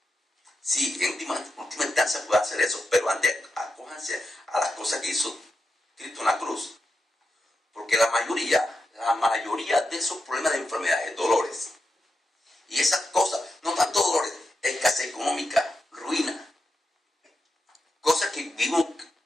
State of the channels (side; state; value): both; normal; correlation 0.87